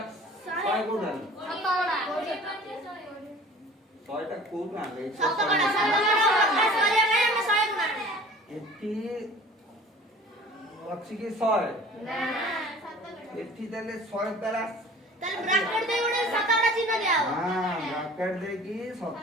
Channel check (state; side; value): normal; both; correlation 0.46